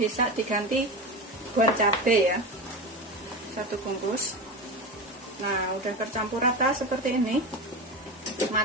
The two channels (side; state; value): both; normal; correlation 0.24